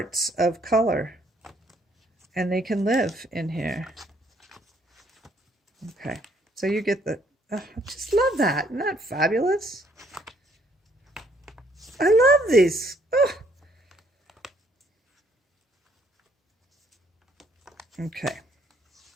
of color, and they can live in here. Okay, so you get I just love that. Isn't that fabulous? I love these. Oh. Okay.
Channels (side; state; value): both; normal; correlation 0.66